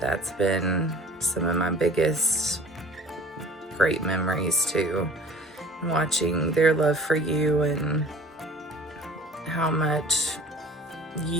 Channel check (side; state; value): both; normal; correlation 0.46